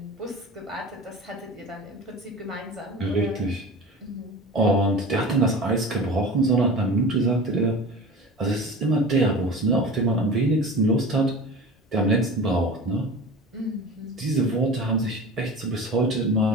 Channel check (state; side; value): normal; both; correlation 0.35